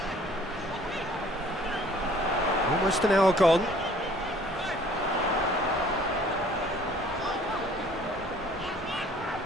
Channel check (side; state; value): both; normal; correlation 0.54